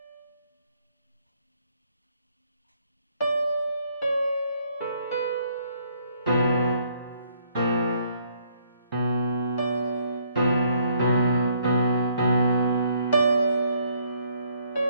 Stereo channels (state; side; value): inverted; both; correlation -0.67